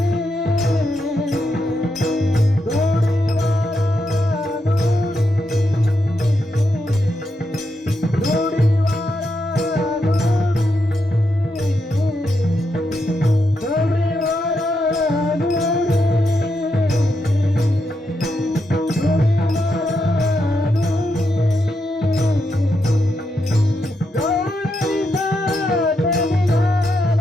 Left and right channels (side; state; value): both; normal; correlation 0.83